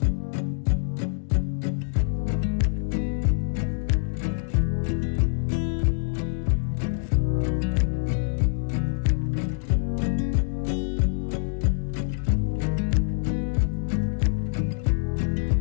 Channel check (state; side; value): silent; right; digital silence